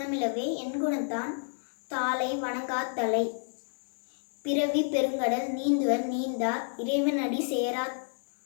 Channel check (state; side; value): silent; right; digital silence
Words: என் குணத்தான் தாளை வணங்காத்தலை. பிறவி பெருங்கடல் நீந்துவர் நீந்தார் இறைவனடி சேரா